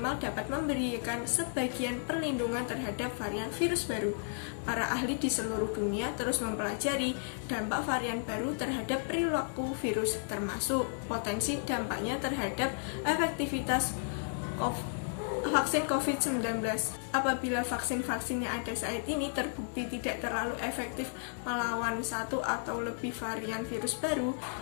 dapat memberikan sebagian perlindungan terhadap varian virus baru. Para ahli di seluruh dunia terus mempelajari dampak varian baru terhadap perilaku virus, termasuk potensi dampaknya terhadap efektivitas vaksin COVID-19. Apabila vaksin-vaksin yang ada saat ini terbukti tidak terlalu efektif melawan satu atau lebih varian virus baru,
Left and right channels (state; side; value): silent; right; digital silence